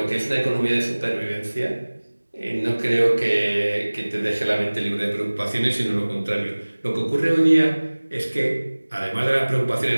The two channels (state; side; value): inverted; both; correlation -1.00